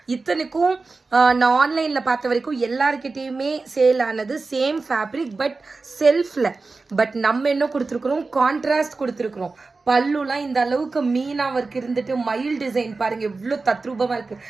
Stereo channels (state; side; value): quieter; left; 3.9 dB